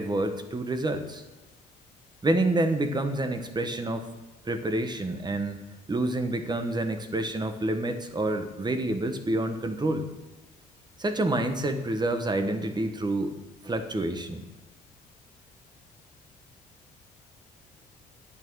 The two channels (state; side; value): normal; both; correlation 0.71